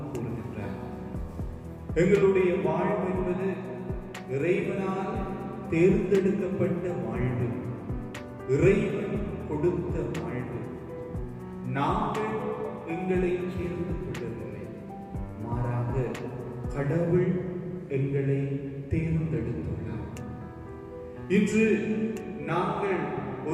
கூறுகின்றார். எங்களுடைய வாழ்வு என்பது இறைவனால் தேர்ந்தெடுக்கப்பட்ட வாழ்வு, இறைவன் கொடுத்த வாழ்வு. நாங்கள் எங்களை சேர்ந்து கொள்ளவில்லை, மாறாக கடவுள் எங்களை தேர்ந்தெடுத்துள்ளார். இன்று நாங்கள்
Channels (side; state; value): both; identical; correlation 1.00